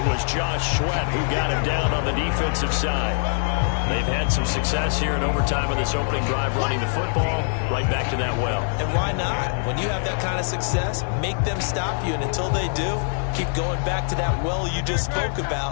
was Josh Sweat who got him down on the defensive side. They've had some success here in overtime in this opening drive running the football. Right back to that well. And why not? When you have that kind of success, make them stop you. And until they do, keep going back to that well you just spoke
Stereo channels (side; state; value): right; silent; digital silence